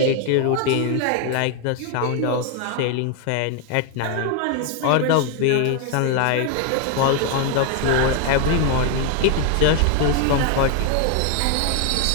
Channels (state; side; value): different; both; correlation 0.00